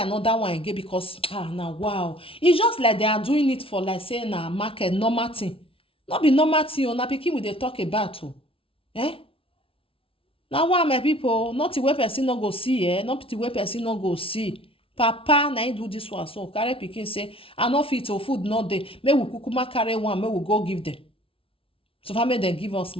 one again because, now, wow. It's just like they are doing it for, like, say, na market, normal thing. Not be normal thing, na pikin we dey talk about, Now, why, my people, not the way person no go see, not the way person no go see. Papa, na him do this one, so carry pikin say, I no fit to food not dey. May we kukuma carry one, may we go give them. So, far, may they give us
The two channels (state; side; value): late; right; 0.26 ms